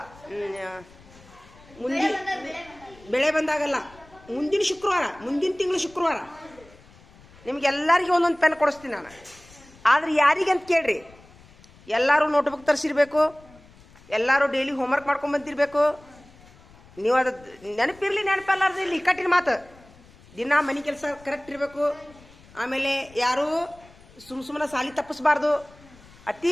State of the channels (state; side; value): noise; left; rumble, 25 dB below the sound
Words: ಮುಂದಿನ ಬೆಳೆ ಬಂದಾಗಲ್ಲ, ಮುಂದಿನ ಶುಕ್ರವಾರ, ಮುಂದಿನ ತಿಂಗಳು ಶುಕ್ರವಾರ ನಿಮ್ಗೆಲ್ಲರಿಗೂ ಒಂದೊಂದು ಪೆನ್ ಕೊಡಿಸ್ತೀನಿ ನಾನು. ಆದ್ರೆ ಯಾರಿಗೆ ಅಂತ ಕೇಳ್ರಿ, ಎಲ್ಲರೂ ನೋಟ್ಬುಕ್ ತರಿಸಿರ್ಬೇಕು, ಎಲ್ಲರೂ ಡೈಲಿ ಹೋಮ್ವರ್ಕ್ ಮಾಡ್ಕೊಂಡು ಬಂದಿರಬೇಕು. ನೀವು ಅದು ನೆನಪಿರಲಿ ನೆನಪಲ್ಲಾರ್ದು ಇಲ್ಲಿ ಇಕ್ಕಟ್ಟಿನ ಮಾತು. ದಿನ ಮನೆ ಕೆಲಸ ಕರೆಕ್ಟ್ ಇರಬೇಕು. ಆಮೇಲೆ ಯಾರೂ ಸುಮ್ಮನೆ ಸಾಲಿ ತಪ್ಪಿಸ್ಬಾರ್ದು. ಅತಿ